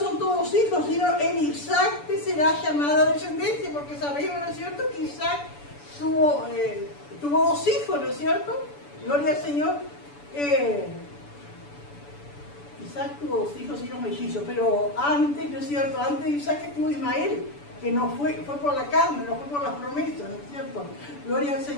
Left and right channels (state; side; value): late; right; 7.0 ms